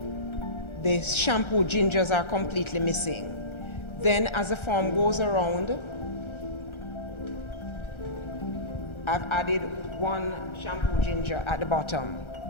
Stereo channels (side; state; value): right; late; 1.3 ms